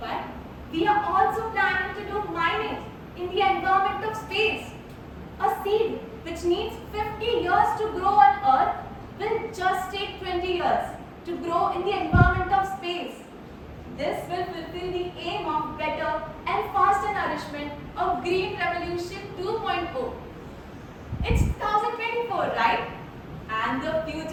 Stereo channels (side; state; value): both; identical; correlation 1.00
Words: we are also planning to do mining in the environment of space. A seed which needs 50 years to grow on Earth, will just take 20 years to grow in the environment of space. This will fulfill the aim of better and faster nourishment of Green Revolution 2.0. It's 2024, right? And the